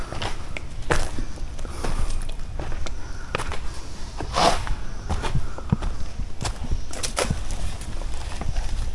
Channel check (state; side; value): identical; both; correlation 1.00